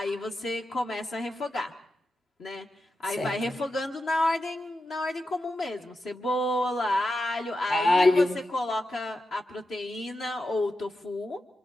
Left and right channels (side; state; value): both; normal; correlation 0.89